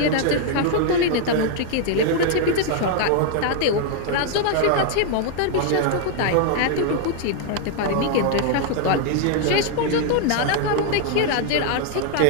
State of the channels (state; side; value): different; both; correlation 0.00